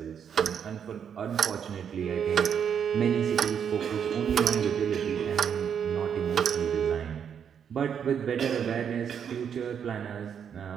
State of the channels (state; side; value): quieter; left; 7.9 dB